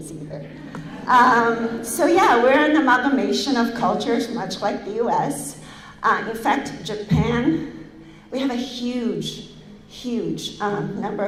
either. So yeah, we're an amalgamation of cultures, much like the US. In fact, Japan, we have a huge number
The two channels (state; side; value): identical; both; correlation 1.00